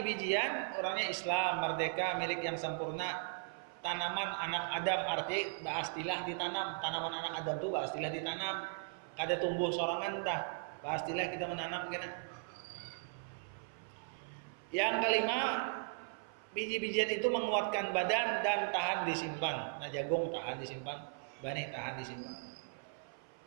orangnya Islam, merdeka, milik yang sempurna. Tanaman anak Adam, arti baastilah ditanam. Tanaman anak Adam tuh baastilah ditanam. Kada tumbuh sorangan dah. Baastilah kita menanam kena. Yang kelima, biji-bijian itu menguatkan badan dan tahan disimpan. Nah, jagung tahan disimpan, banih tahan disimpan.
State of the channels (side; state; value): left; silent; 53 dB below the other